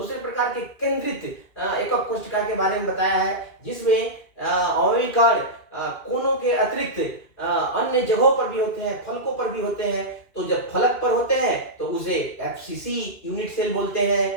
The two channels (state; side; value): late; right; 2.4 ms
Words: प्रकार के केंद्रित एकक कोशिका के बारे में बताया है, जिसमें अवयवी कण कोनों के अतिरिक्त अन्य जगहों पर भी होते हैं, फलकों पर भी होते हैं। तो जब फलक पर होते हैं तो उसे एफसीसी यूनिट सेल बोलते